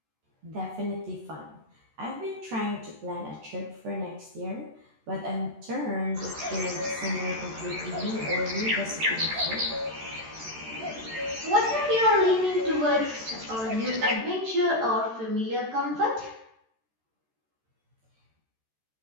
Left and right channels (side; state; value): left; late; 13 ms